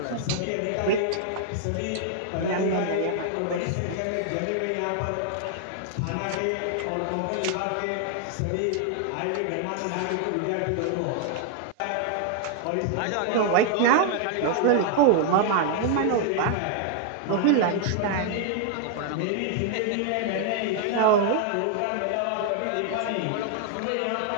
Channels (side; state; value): both; different; correlation 0.00